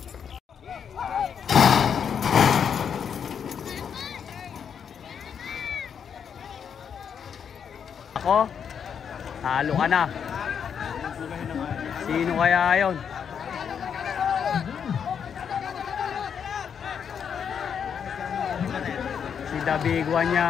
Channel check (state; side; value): quieter; right; 7.5 dB